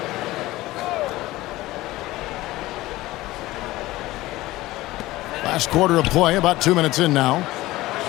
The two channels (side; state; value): right; quieter; 17.9 dB